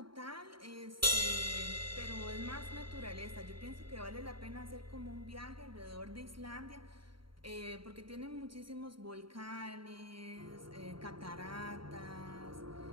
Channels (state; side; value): late; left; 0.73 ms